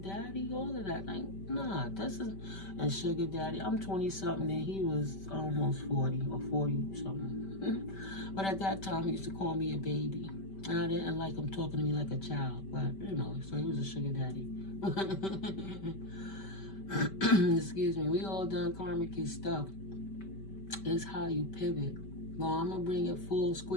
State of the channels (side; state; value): right; late; 5.2 ms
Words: all of that. Like, nah, this is a sugar daddy. I'm 20-something and he was almost 40 or 40-something. But at that time, he used to call me a baby. And I didn't like him talking to me like a child, but, you know, so he was a sugar daddy. Excuse me. We all done karmic stuff. It's how you pivot. Well, I'm going to bring it full